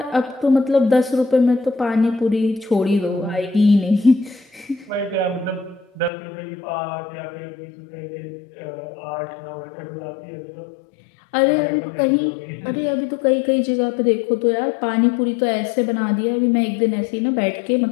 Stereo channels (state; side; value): drops out; right; at 6.1 s